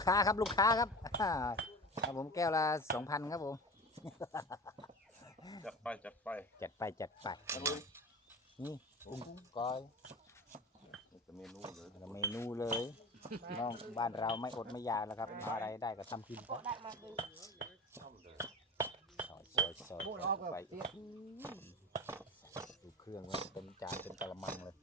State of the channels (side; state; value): both; normal; correlation 0.32